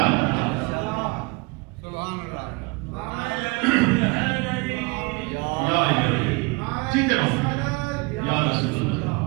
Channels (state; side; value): quieter; left; 27.5 dB